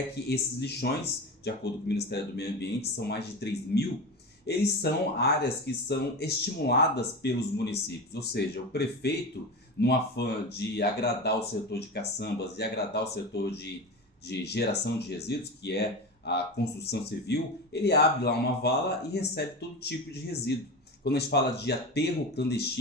que esses lixões, de acordo com o Ministério do Meio Ambiente, são mais de 3.000. Eles são áreas que são estimuladas pelos municípios, ou seja, o prefeito, no afã de agradar o setor de caçambas e agradar o setor de geração de resíduos, que é a construção civil, ele abre lá uma vala e recebe todo tipo de resíduo. Quando a gente fala de aterro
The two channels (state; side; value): normal; both; correlation 0.25